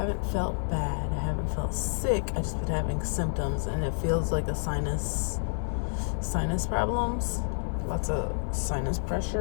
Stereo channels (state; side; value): silent; right; 59 dB below the other